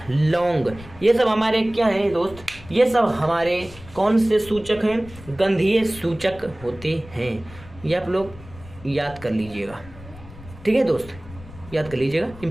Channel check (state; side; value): noise; left; rumble, 18 dB below the sound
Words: लौंग, ये सब हमारे क्या हैं दोस्त, ये सब हमारे कौन से सूचक हैं, गंधीय सूचक होते हैं। ये आप लोग याद कर लीजिएगा। ठीक है दोस्त, याद कर लीजिएगा,